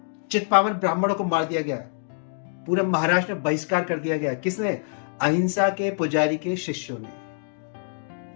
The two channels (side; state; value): right; silent; digital silence